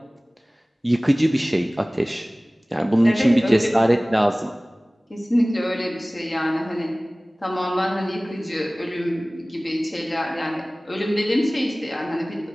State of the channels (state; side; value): normal; both; correlation 0.98